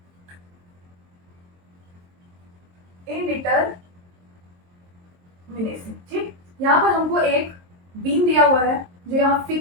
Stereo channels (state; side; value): late; left; 23 ms